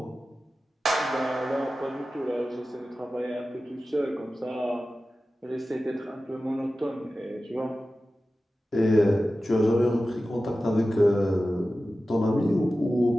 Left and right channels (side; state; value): both; normal; correlation 0.94